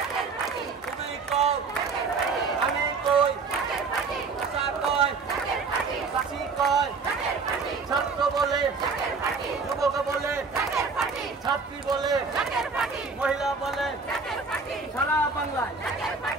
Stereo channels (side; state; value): left; quieter; 4.7 dB